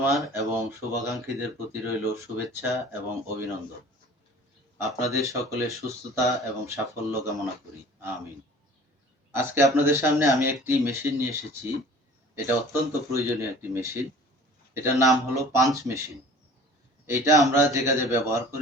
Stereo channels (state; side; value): normal; both; correlation 0.46